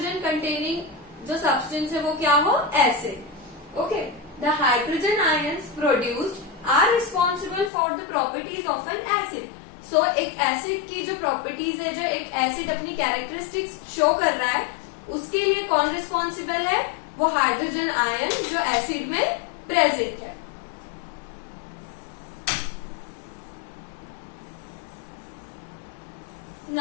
कंटेनिंग जो सब्सटेंस है वो क्या हो? Acid. Okay, the hydrogen ions produced are responsible for the properties of an acid. So एक एसिड की जो प्रॉपर्टीज है, जो एक एसिड अपनी कैरेक्टरिस्टिक्स शो कर रहा है, उसके लिए कौन रिस्पॉन्सिबल है? वो हाइड्रोजन आयन जो एसिड में प्रेजेंट है।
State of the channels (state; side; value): drops out; right; at 7.7 s